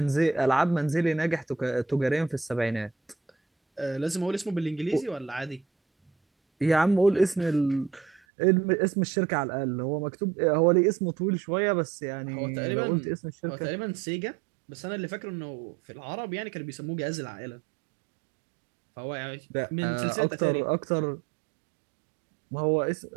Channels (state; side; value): drops out; left; at 8.2 s